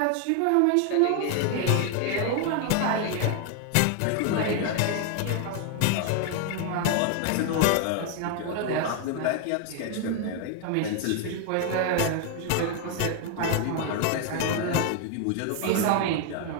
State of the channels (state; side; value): different; both; correlation 0.01